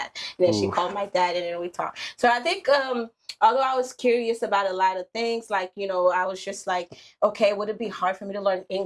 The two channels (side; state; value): both; identical; correlation 1.00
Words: And then she called my dad and then we talked. So I think although I was curious about a lot of things, like, I was just like, okay, would it be hard for me to learn